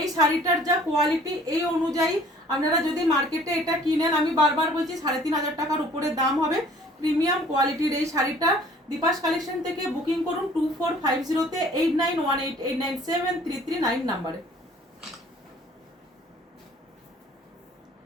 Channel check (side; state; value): both; normal; correlation 0.53